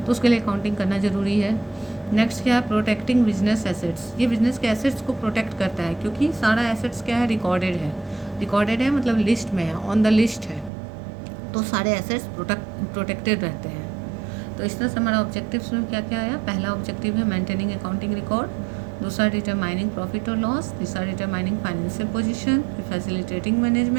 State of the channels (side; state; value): left; drops out; at 10.7 s